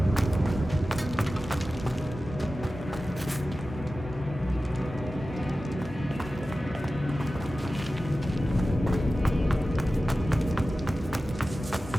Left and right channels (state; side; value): normal; both; correlation 0.95